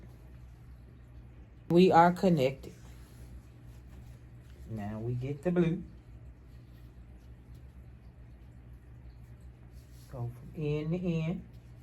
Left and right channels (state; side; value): identical; both; correlation 1.00